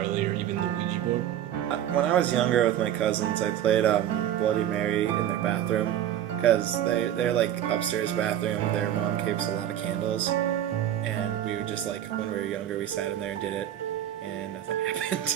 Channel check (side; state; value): left; quieter; 11.2 dB